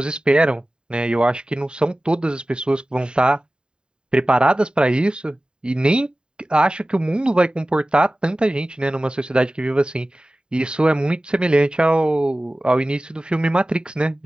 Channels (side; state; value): left; late; 0.049 ms